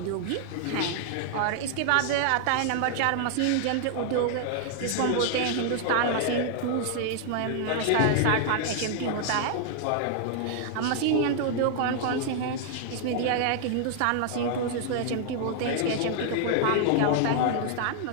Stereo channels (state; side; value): different; both; correlation -0.01